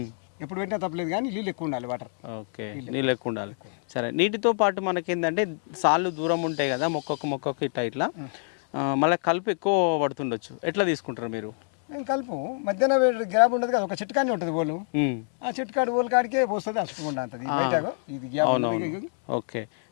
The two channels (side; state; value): right; silent; 55 dB below the other